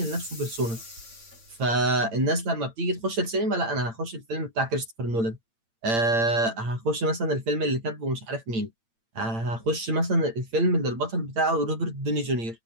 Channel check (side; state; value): left; late; 8.8 ms